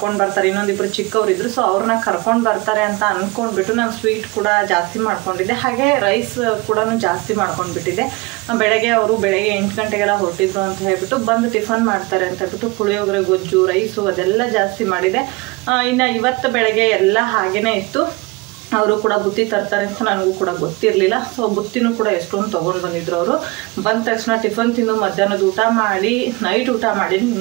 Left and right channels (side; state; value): left; quieter; 24.6 dB